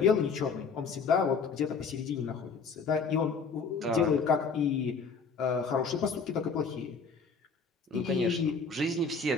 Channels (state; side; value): quieter; right; 5.0 dB